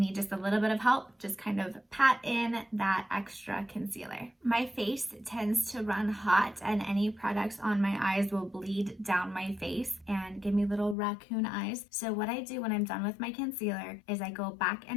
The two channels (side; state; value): right; drops out; at 11.0 s